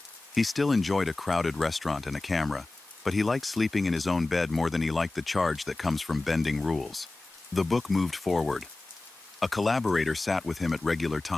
He still enjoyed a crowded restaurant and a camera, but he liked sleeping in his own bed more than he liked the charge that comes from bending rules. The book moved forward. A collaborator sat with him at regular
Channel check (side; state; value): right; quieter; 3.0 dB